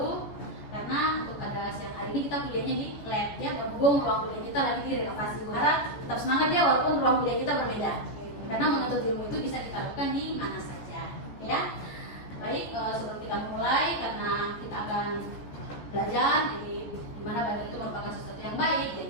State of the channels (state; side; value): late; right; 14 ms